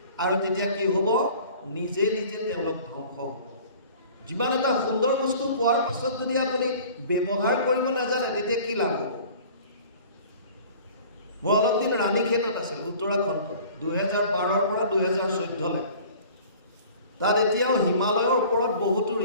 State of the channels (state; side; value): inverted; both; correlation -0.47